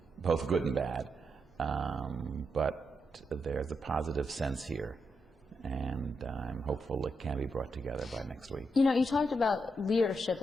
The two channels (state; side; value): normal; both; correlation 0.83